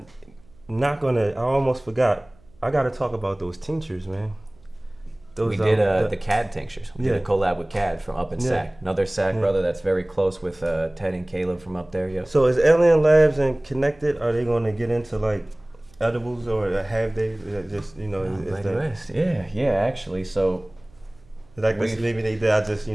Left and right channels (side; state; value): right; noise; hum, 29 dB below the sound